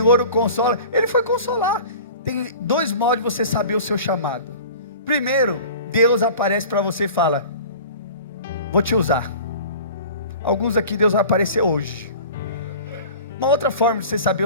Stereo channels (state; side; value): inverted; both; correlation -0.41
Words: o consola. Ele foi consolar. Tem 2 modos de você saber o seu chamado. Primeiro, Deus aparece para você e fala: vou te usar. Alguns aqui Deus vai aparecer hoje. Uma outra forma de você saber